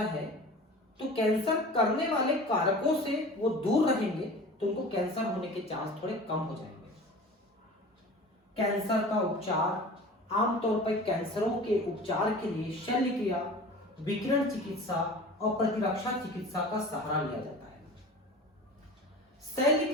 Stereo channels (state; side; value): normal; both; correlation 0.38